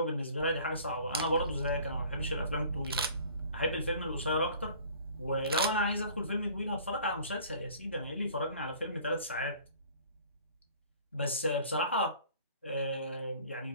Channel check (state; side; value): inverted; both; correlation -0.50